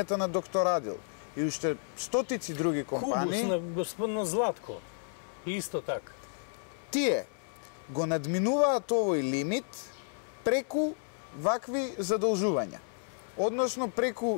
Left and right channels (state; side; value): silent; right; 57 dB below the other